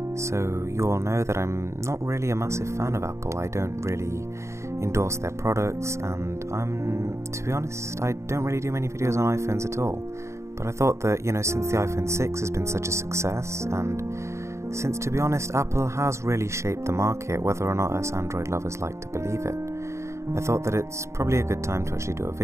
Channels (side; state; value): left; late; 0.14 ms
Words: So you all know that I'm not really a massive fan of Apple. I don't really endorse their products, and to be honest, I don't really do many videos on iPhones at all. But I thought that, since the iPhone 6 has been such a success, and since, to be honest, Apple has really shaped the market, whether or not us Android lovers like to believe it, I thought that it's probably a good time to actually do a